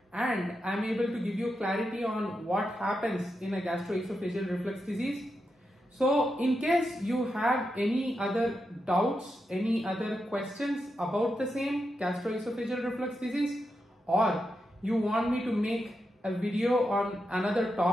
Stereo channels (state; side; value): normal; both; correlation 0.87